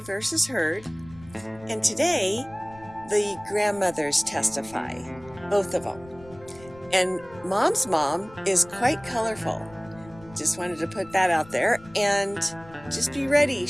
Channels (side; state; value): left; noise; rumble, 22 dB below the sound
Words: versus Heard. And today, the grandmothers testify, both of them. And Mom's mom is quite colorful. Just wanted to put that out there. And just be ready.